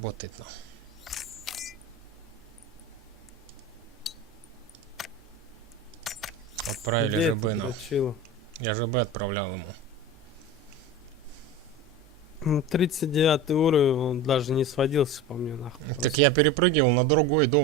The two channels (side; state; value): both; normal; correlation 0.29